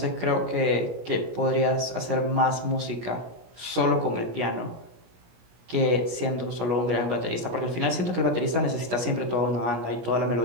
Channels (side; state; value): left; late; 17 ms